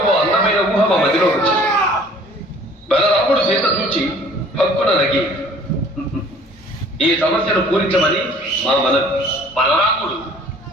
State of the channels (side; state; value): both; normal; correlation 0.53